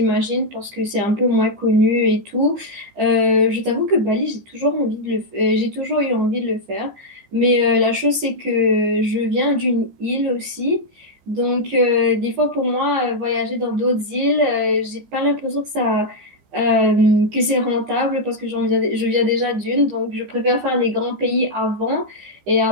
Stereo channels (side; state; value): left; late; 15 ms